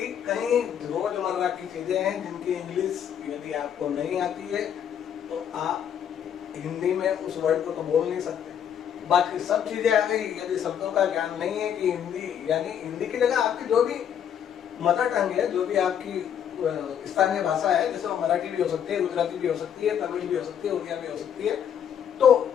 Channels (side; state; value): right; quieter; 8.9 dB